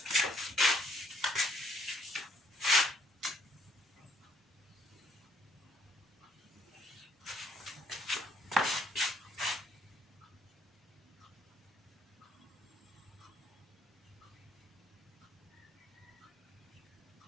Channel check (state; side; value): normal; both; correlation 0.66